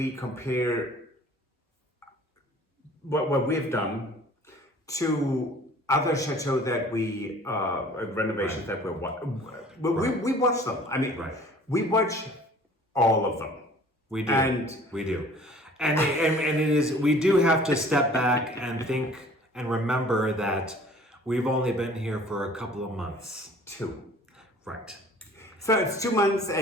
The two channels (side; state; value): both; normal; correlation 0.50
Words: compare what we've done to other chateaux that we renovations that we watch them. I mean, we watch all of them. We do. And we do. And it is. We do have to step back and think and remember that we've only been here for a couple of months. 2. Right. So it's 2 months,